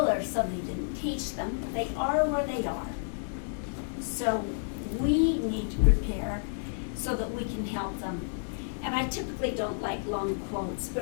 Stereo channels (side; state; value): right; silent; 57 dB below the other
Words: or somebody didn't teach them. They are where they are. So we need to prepare so that we can help them. And I typically don't like long quotes,